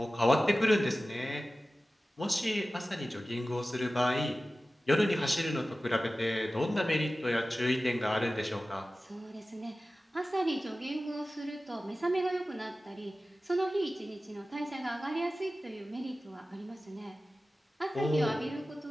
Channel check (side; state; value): both; normal; correlation 0.96